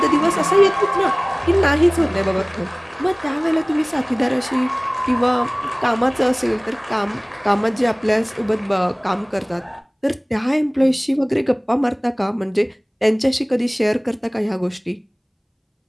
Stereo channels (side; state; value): both; identical; correlation 1.00